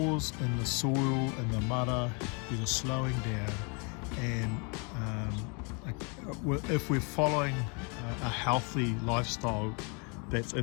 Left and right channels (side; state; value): right; quieter; 34.2 dB